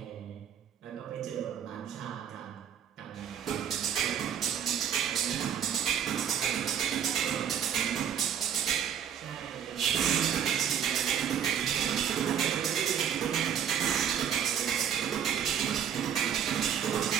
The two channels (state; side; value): quieter; left; 8.8 dB